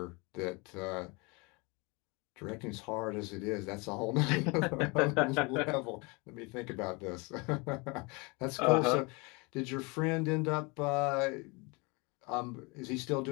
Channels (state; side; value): quieter; right; 28.3 dB